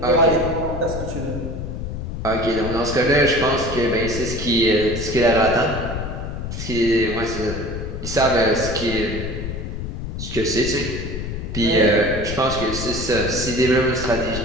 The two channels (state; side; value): noise; left; rumble, 6 dB below the sound